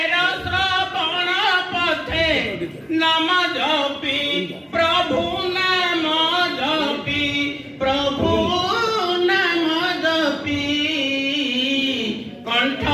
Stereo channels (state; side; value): identical; both; correlation 1.00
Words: শ্রবণ পথে নাম জপি প্রভু নাম জপি প্রভু নাম জপি কণ্ঠ